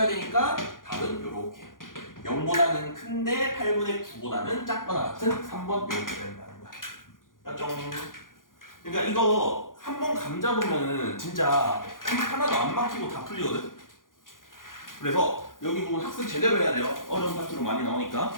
되니까 답은 요렇게 0보다는 큰데 8분의 9보다는 작거나 같은 3번 이렇게 된다는 거야. 맞죠? 그러니까 이거 한 번 감 잡으면은 진짜 하나도 안 막히고 다 풀리거든. 그래서 여기 부분 학습 제대로 해야 돼요. 어려운 파트로 많이 나오니까.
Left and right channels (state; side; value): late; right; 0.90 ms